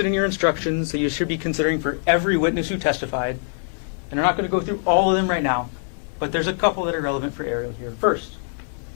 in your instructions that you should be considering for every witness who testified. And I'm not going to go through all of them right now, but there's a couple that are relevant for Arielle here. First,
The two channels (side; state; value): right; silent; 63 dB below the other